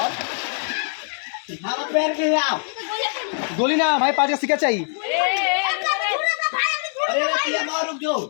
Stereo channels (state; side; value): silent; right; 64 dB below the other